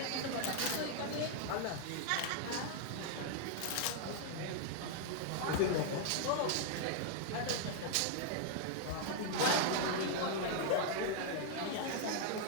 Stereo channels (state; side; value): different; both; correlation 0.00